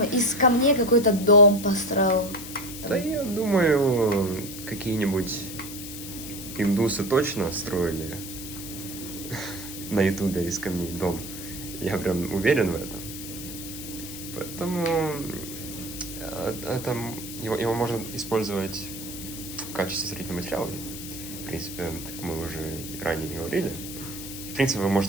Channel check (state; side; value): noise; left; hiss, 10 dB below the sound